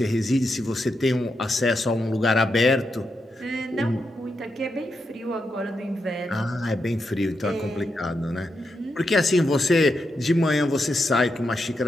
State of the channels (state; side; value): normal; both; correlation 0.85